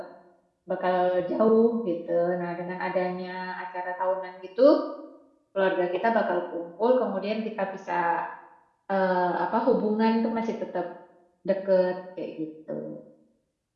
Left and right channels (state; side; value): identical; both; correlation 1.00